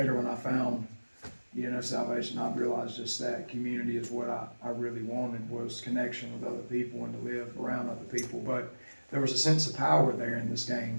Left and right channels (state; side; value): inverted; both; correlation -1.00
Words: when I found, you know, salvation, I realized just that community is what I really wanted, was connection with other people and to live around other people. But there was a sense of power there in this game.